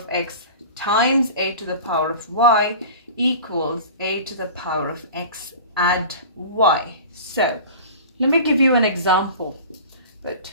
x times a to the power of y equals a to the power of x add y. So let me give you an example. But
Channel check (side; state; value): both; inverted; correlation -0.37